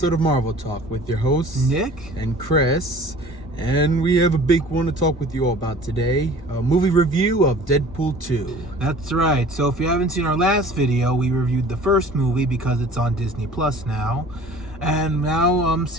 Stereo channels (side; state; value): both; normal; correlation 0.46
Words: of Marvel Talk with your hosts, Nick and Chris. And we have a big one to talk with you all about today. A movie review of Deadpool 2. That's right. So if you haven't seen our last video, we reviewed the first movie because it's on Disney Plus now. And now I'm